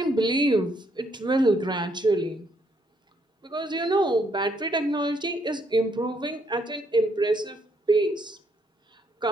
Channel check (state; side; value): normal; both; correlation 0.72